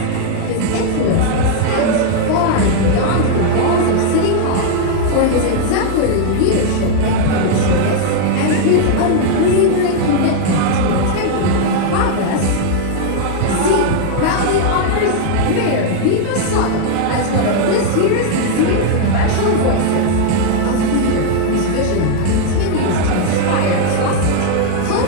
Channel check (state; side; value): different; both; correlation 0.00